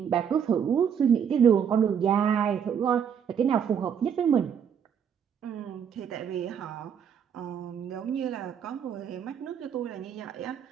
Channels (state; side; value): quieter; left; 7.8 dB